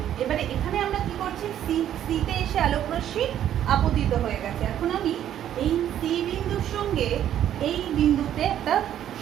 এবারে এখানে আমরা কি করছি, সিতে এসে আলোক রশ্মি আপতিত হয়ে গেছে। এখন আমি এই সি বিন্দুর সঙ্গে এই বিন্দুতে একটা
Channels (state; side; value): quieter; left; 10.9 dB